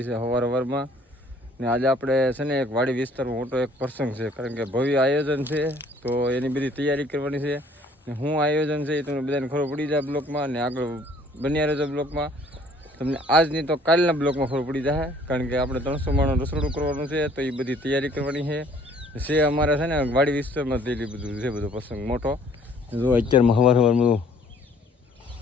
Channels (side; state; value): both; normal; correlation 0.57